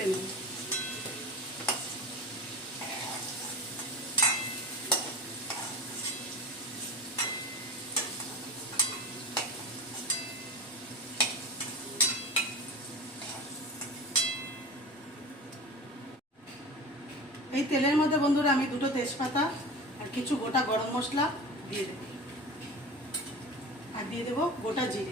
নেব। এই তেলের মধ্যে বন্ধুরা আমি 2টো তেজপাতা আর কিছু গোটা গরম মশলা দিয়ে দেব, আর দিয়ে দেব গোটা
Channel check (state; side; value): normal; both; correlation 0.32